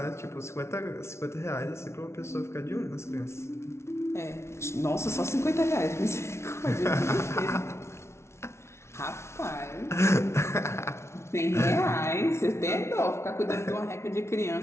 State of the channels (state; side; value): late; right; 0.13 ms